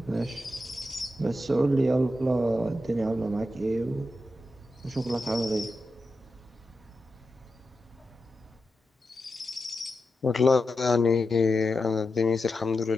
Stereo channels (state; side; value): normal; both; correlation 0.89